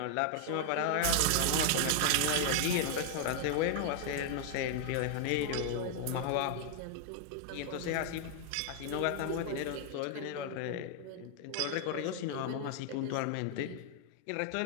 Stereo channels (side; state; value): both; different; correlation 0.00